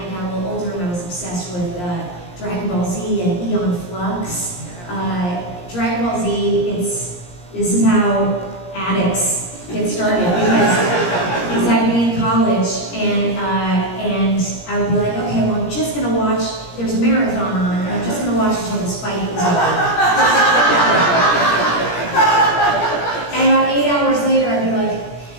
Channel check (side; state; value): right; late; 17 ms